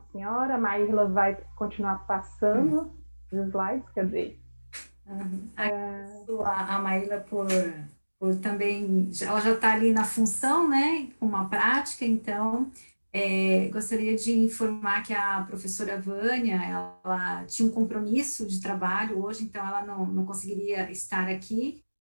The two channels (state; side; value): inverted; both; correlation -1.00